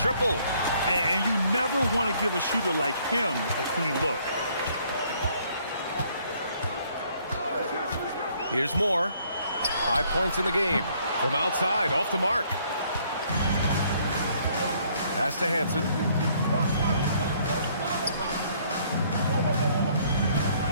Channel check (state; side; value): inverted; both; correlation -0.64